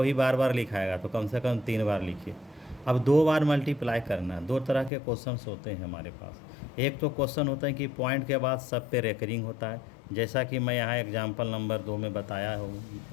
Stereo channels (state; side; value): drops out; right; at 4.9 s